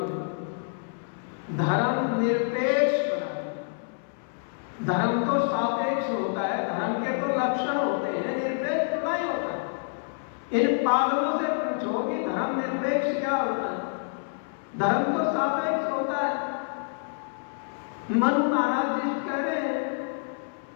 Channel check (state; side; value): silent; right; 60 dB below the other